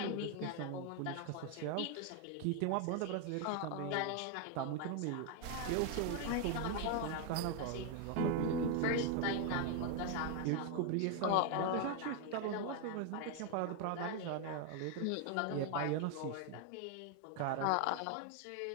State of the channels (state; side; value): different; both; correlation 0.01